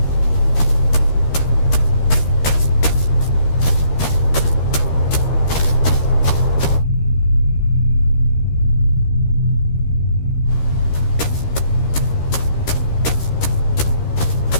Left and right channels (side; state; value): right; late; 13 ms